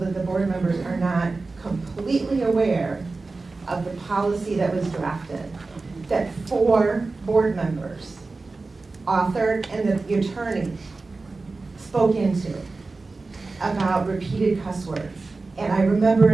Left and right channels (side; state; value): left; quieter; 3.7 dB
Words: the board members are not completely aware of the policy that was drafted, that 4 board members authored and that the attorney spoke into about repeated cuss words. And I remember